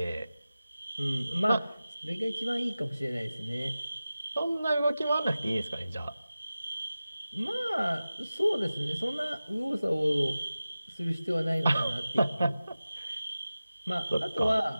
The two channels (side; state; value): both; inverted; correlation -0.96